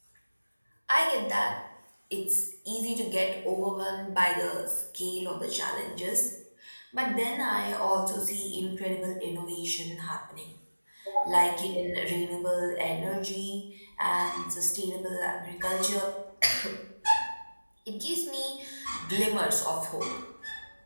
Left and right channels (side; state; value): both; inverted; correlation -1.00